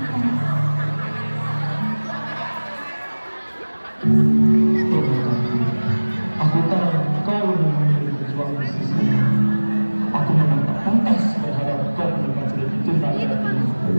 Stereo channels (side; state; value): both; inverted; correlation -1.00